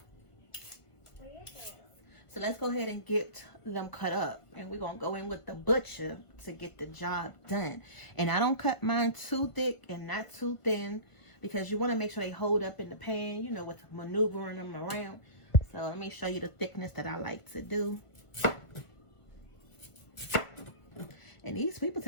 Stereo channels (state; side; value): late; right; 1.5 ms